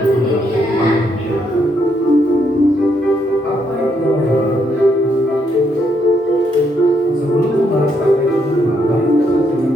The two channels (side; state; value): both; normal; correlation 0.75